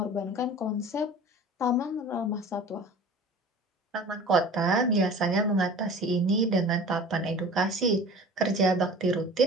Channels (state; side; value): normal; both; correlation 0.41